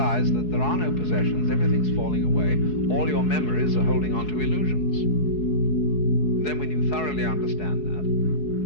that there are no possessions, everything's falling away, all your memories are holding on to illusions. And then when you thoroughly understand that,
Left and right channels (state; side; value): late; right; 4.7 ms